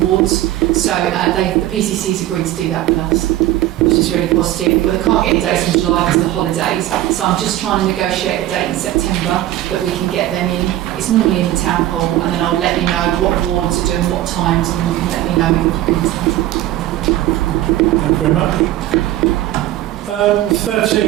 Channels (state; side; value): quieter; left; 14.2 dB